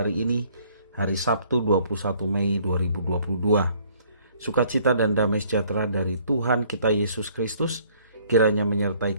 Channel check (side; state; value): both; inverted; correlation -0.61